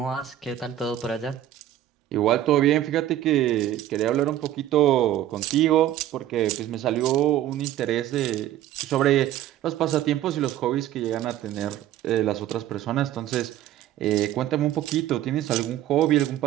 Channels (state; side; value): quieter; left; 12.5 dB